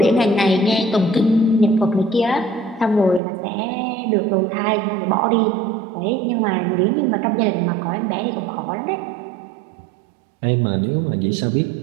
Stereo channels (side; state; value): left; drops out; at 3.2 s